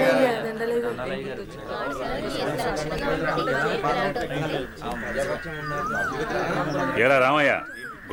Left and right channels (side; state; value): both; identical; correlation 1.00